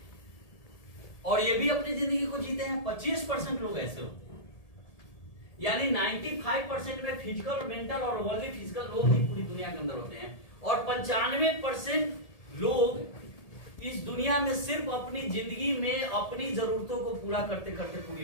और ये भी अपनी जिंदगी को जीते हैं। 25% लोग ऐसे होते हैं, यानी 95% में फिजिकल, मेंटल और ओनली फिजिकल लोग ही पूरी दुनिया के अंदर होते हैं और 95% लोग इस दुनिया में सिर्फ अपनी जिंदगी में अपनी जरूरतों को पूरा करते करते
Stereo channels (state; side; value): late; right; 1.8 ms